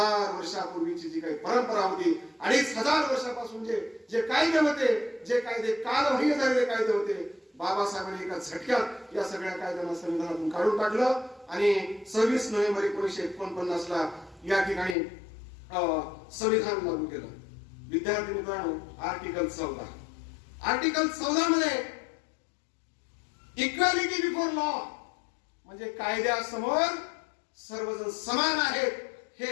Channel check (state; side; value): drops out; right; at 15.0 s